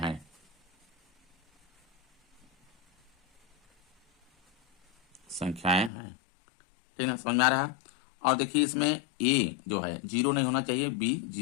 ठीक ना, समझ में आ रहा है। और देखिए इसमें ए जो है 0 नहीं होना चाहिए, बी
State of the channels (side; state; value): right; drops out; at 5.9 s